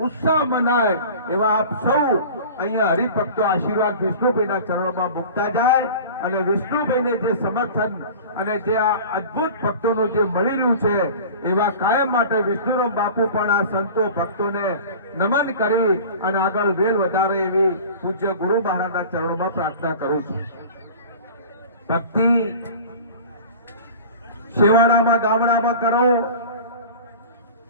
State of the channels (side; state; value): both; inverted; correlation -0.38